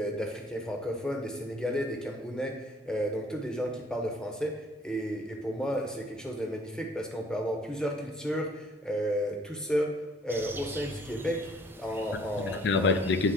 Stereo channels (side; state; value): both; normal; correlation 0.58